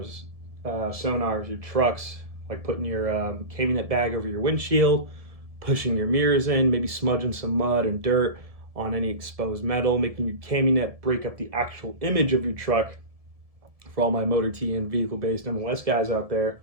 sonars, your trucks, like putting your cami net bag over your windshield, pushing your mirrors in, maybe smudging some mud and dirt on any exposed metal, making your cami net break up the actual image of your truck. For all my motor T and vehicle based MOS guys out there,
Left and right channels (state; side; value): late; left; 1.7 ms